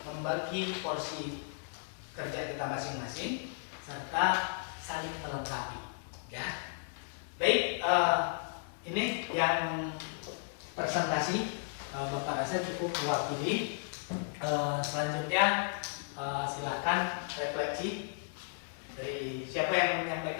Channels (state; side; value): silent; right; 55 dB below the other